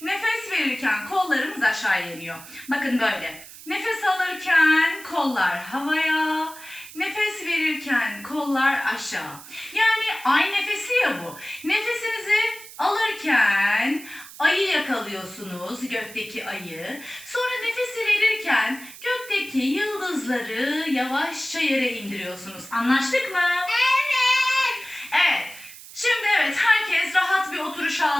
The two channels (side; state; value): right; noise; hiss, 17 dB below the sound